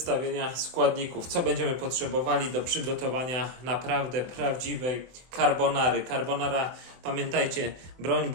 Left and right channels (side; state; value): left; late; 24 ms